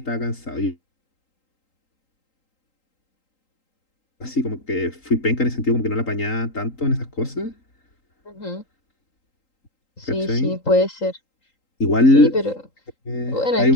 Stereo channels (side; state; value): right; late; 3.8 ms